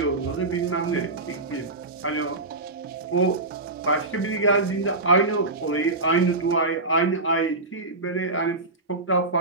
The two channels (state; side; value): quieter; left; 3.1 dB